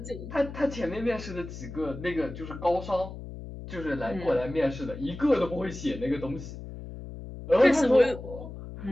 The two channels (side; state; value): left; noise; hum, 11 dB below the sound